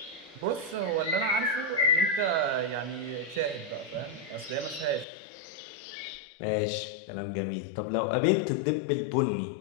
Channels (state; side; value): drops out; right; at 5.1 s